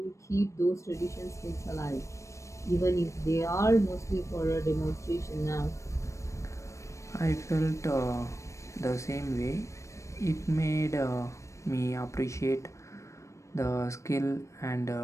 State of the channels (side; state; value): right; late; 0.15 ms